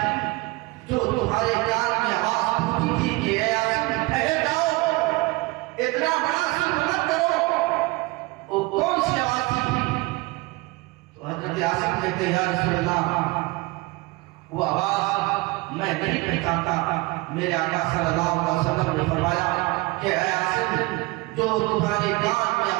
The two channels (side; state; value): left; quieter; 23.3 dB